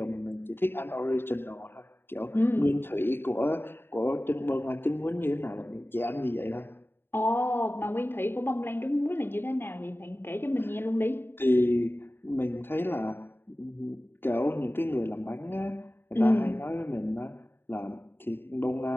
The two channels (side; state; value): right; late; 0.11 ms